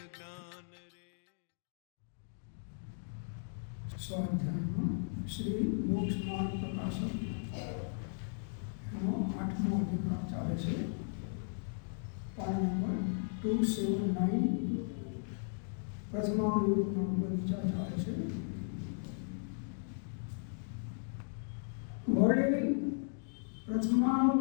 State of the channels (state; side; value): silent; right; digital silence